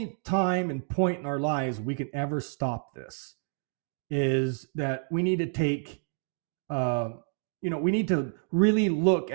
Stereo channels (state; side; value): silent; left; 59 dB below the other